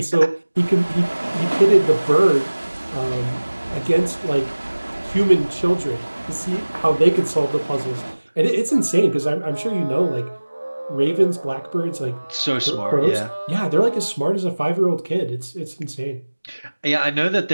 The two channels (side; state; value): both; inverted; correlation -1.00